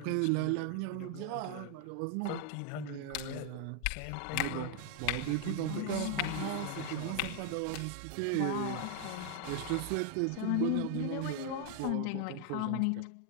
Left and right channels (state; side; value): different; both; correlation 0.00